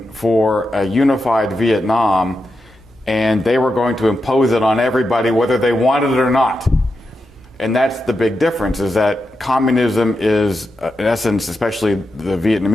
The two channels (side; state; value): both; normal; correlation 0.87